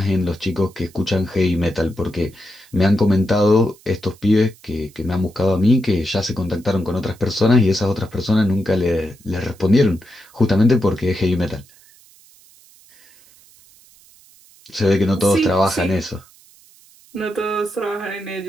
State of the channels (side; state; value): right; noise; hiss, 27 dB below the sound